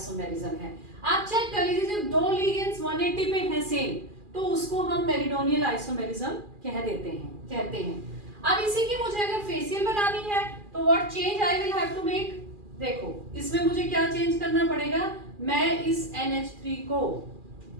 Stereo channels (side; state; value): left; late; 2.4 ms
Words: है। आप चेक कर लीजिए जब 2 लिगेंड्स 180 पे है सेम, तो उसको हम मेरिडोनियल आइसोमेरिज्म कहते हैं। अब इसी की मुझे अगर फेशियल बनानी है तो what change I will have to make, देखो इसमें मुझे क्या चेंज करना पड़ेगा, मैं इस NH3 को,